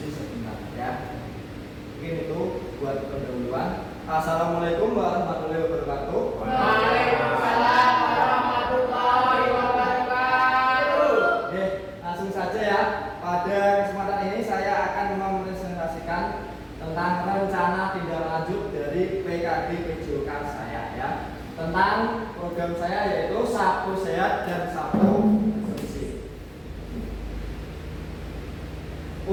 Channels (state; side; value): identical; both; correlation 1.00